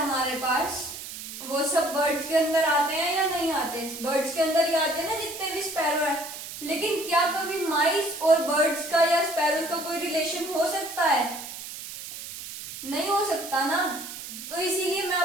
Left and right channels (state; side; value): noise; right; hiss, 10 dB below the sound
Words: पास वो सब बर्ड्स के अंदर आते हैं या नहीं आते? बर्ड्स के अंदर ही आते हैं ना जितने भी स्पैरो है। लेकिन क्या कभी माइस और बर्ड्स का या स्पैरोज का कोई रिलेशन हो सकता है? नहीं हो सकता ना। तो इसीलिए मैं